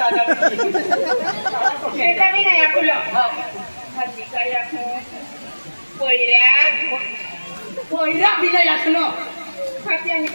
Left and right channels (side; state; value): both; inverted; correlation -1.00